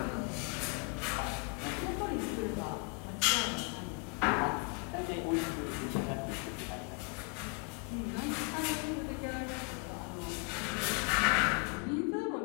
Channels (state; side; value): quieter; right; 35.1 dB